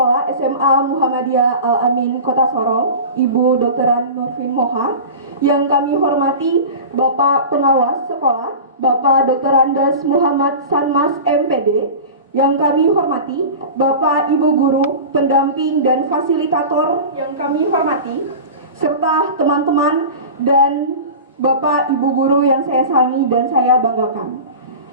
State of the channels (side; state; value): both; inverted; correlation -0.33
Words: SMA Muhammadiyah Al-Amin Kota Sorong, Ibu Dokteran Nurfin Moha. Yang kami hormati Bapak Pengawas Sekolah, Bapak Dr. Andes Muhammad Sanmas MPD. Yang kami hormati Bapak Ibu Guru, pendamping dan fasilitator yang kami hormati, serta teman-teman dan Bapak Ibu Guru yang saya sayangi dan saya banggakan.